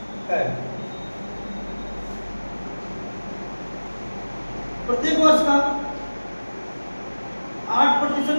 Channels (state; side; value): inverted; both; correlation -1.00